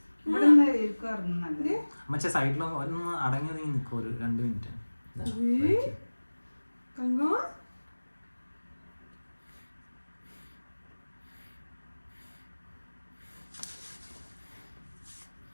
ഇവിടെ നിന്ന് ഇരിക്കുമായിരുന്നു നല്ലത് അമ്മച്ചി സൈഡിൽ ഒന്ന് അടങ്ങി നീ നിൽക്കും ഒരു 2 മിനിറ്റ്. തങ്കം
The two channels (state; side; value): inverted; both; correlation -1.00